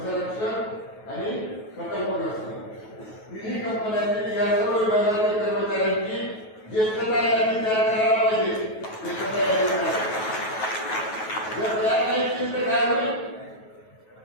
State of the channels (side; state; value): right; late; 9.3 ms